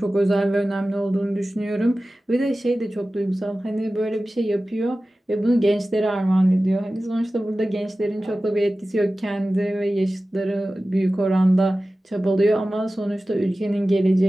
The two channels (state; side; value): normal; both; correlation 0.96